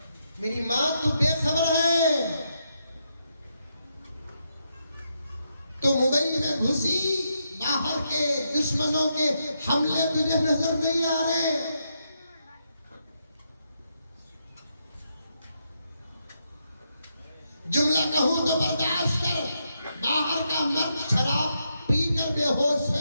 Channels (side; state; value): both; inverted; correlation -0.80